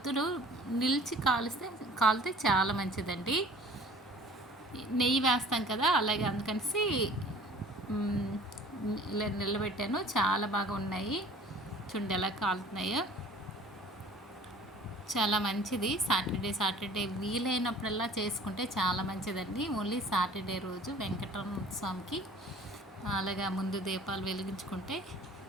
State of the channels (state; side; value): normal; both; correlation 0.48